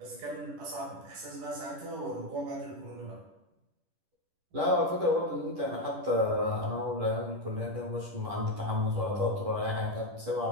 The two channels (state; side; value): late; left; 10 ms